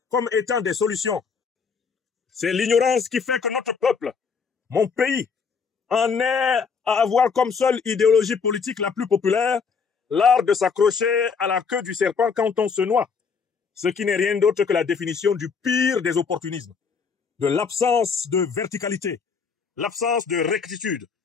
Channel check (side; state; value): right; quieter; 5.6 dB